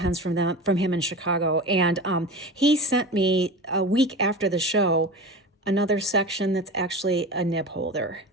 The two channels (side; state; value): both; normal; correlation 0.30